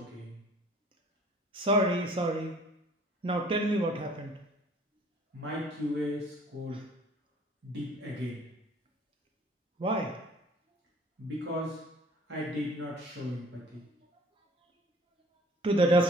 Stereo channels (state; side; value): normal; both; correlation 0.52